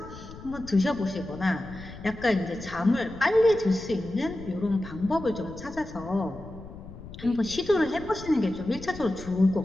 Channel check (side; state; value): left; noise; rumble, 15 dB below the sound